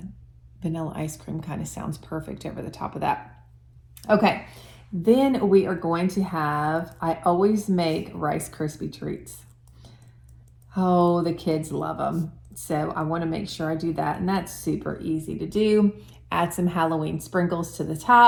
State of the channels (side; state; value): both; identical; correlation 1.00